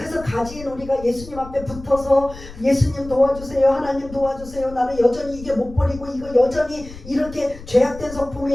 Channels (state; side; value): noise; left; rumble, 16 dB below the sound